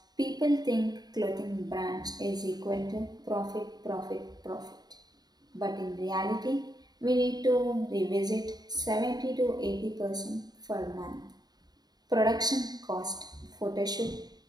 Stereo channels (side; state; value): left; late; 0.19 ms